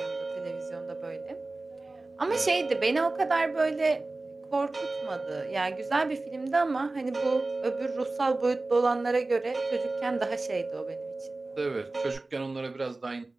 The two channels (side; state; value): left; quieter; 3.2 dB